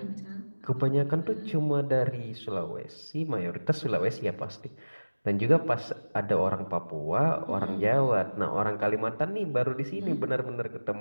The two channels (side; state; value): both; inverted; correlation -1.00